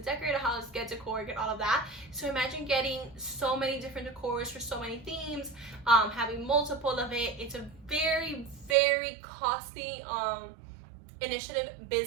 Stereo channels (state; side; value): drops out; left; at 8.8 s